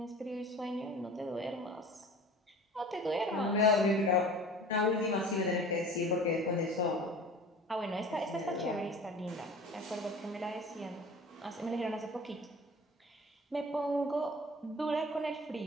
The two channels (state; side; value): normal; both; correlation 0.42